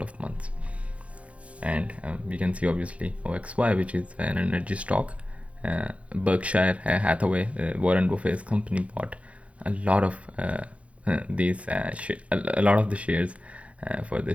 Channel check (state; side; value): late; left; 0.063 ms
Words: of months. And we can see obviously OXY, which is an energy stock. Berkshire Hathaway, Warren Buffett's company, bought a lot of a lot of the shares for